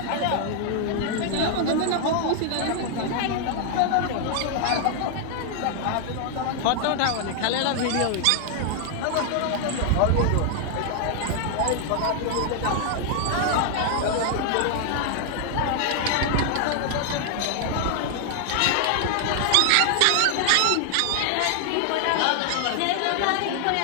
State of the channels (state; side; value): different; both; correlation 0.00